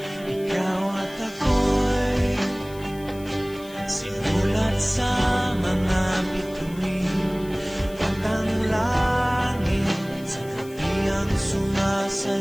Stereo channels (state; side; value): noise; left; hiss, 22 dB below the sound